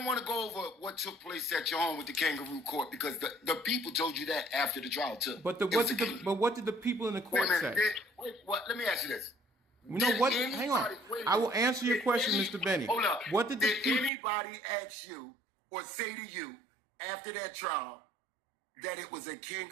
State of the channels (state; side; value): drops out; left; at 14.1 s